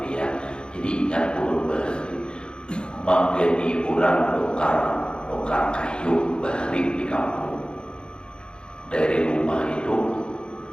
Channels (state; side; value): late; right; 0.051 ms